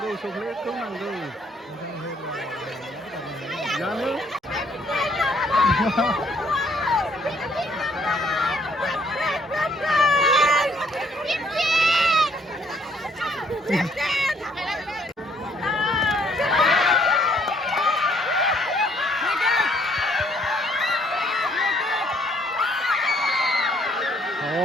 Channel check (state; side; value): normal; both; correlation 0.65